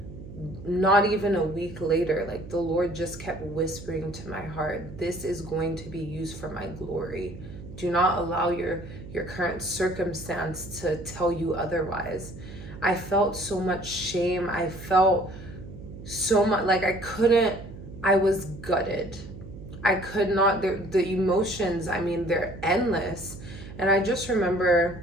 not even a week later, like the Lord just kept whispering to my heart, this is going to be used for my glory. Do not allow your current circumstance to tell you otherwise. I felt so much shame. I felt so much like I was gutted. I could not, the emotions, they're endless. And I just remember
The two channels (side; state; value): right; noise; hum, 14 dB below the sound